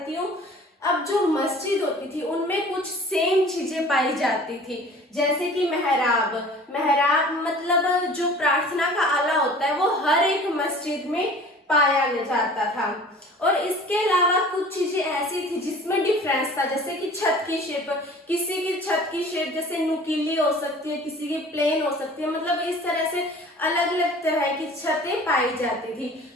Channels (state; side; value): normal; both; correlation 0.46